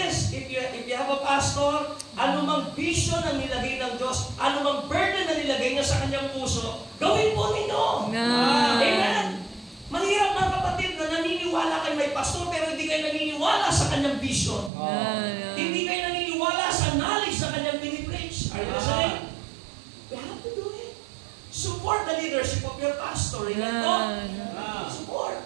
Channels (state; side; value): drops out; left; at 14.7 s